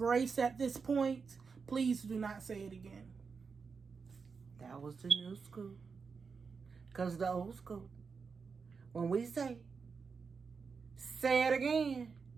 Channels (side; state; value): left; quieter; 5.3 dB